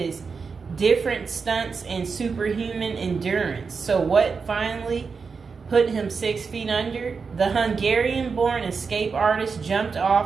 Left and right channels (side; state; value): left; quieter; 5.2 dB